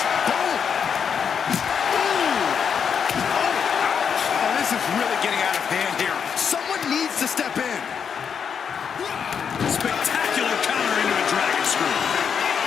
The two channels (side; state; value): right; quieter; 7.1 dB